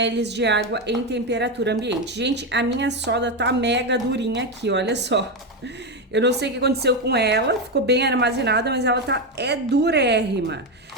de água em temperatura ambiente. Gente, a minha soda tá mega durinha aqui, olha só. Eu não sei o que aconteceu com ela, ficou bem armazenada, mas ela é durérrima.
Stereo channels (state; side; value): normal; both; correlation 0.11